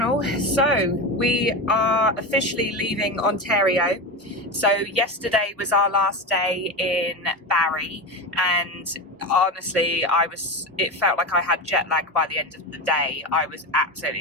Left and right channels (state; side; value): normal; both; correlation 0.21